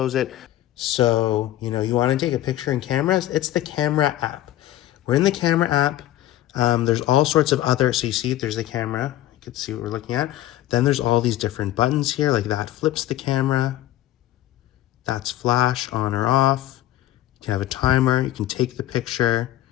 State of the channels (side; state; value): right; quieter; 13.8 dB